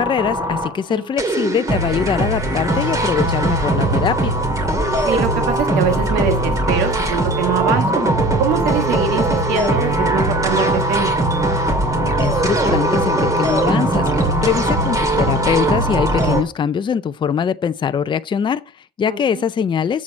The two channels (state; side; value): normal; both; correlation 0.44